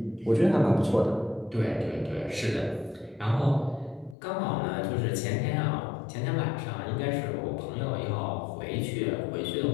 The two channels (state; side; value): drops out; right; at 4.2 s